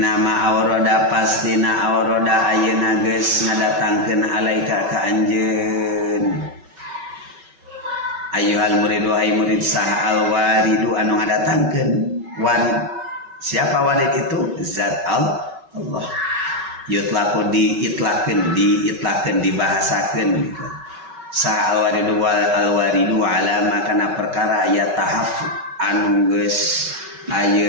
awroda pastina awroda ayeuna geus ngadatangkeun alaika ka anjeun ayyuhal murid wahai murid saha al waridu anu ngadatangkeun warid. Siapa warid itu? Zat Allah. Yutlaku diitlakeun dibahasakeun gitu. Saha al waridu alama kana perkara aya tahaf anu geus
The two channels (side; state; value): left; late; 5.3 ms